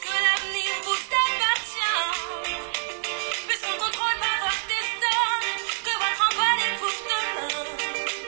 l'avenir vous appartient, puisqu'on ne contrôle pas votre destin, que votre envol est pour demain.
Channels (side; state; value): left; silent; digital silence